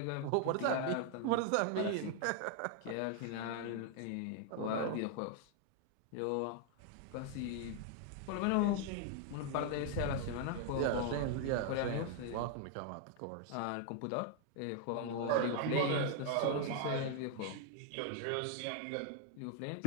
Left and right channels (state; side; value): different; both; correlation 0.00